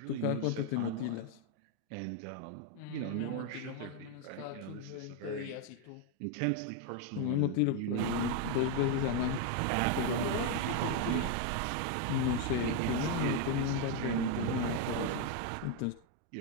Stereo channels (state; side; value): different; both; correlation 0.01